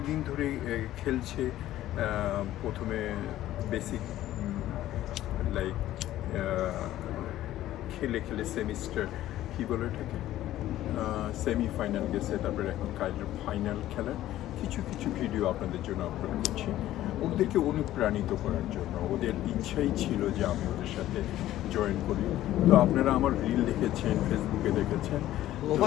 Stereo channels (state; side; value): quieter; right; 13.9 dB